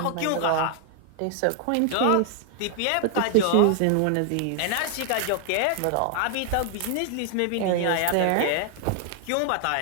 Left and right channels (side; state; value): both; different; correlation 0.00